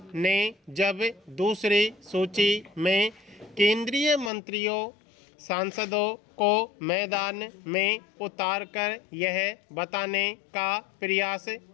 ने जब दूसरी सूची में केंद्रीय मंत्रियों, सांसदों को मैदान में उतारकर यह बताने का प्रयास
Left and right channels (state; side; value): drops out; right; at 4.3 s